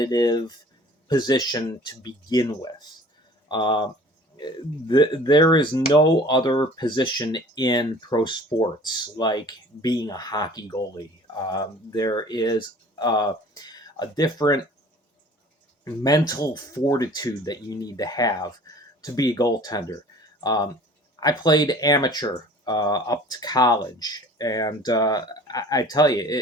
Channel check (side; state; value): both; normal; correlation 0.48